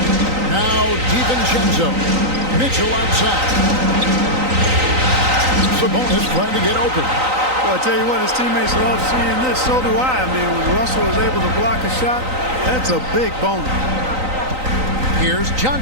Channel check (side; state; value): left; late; 3.9 ms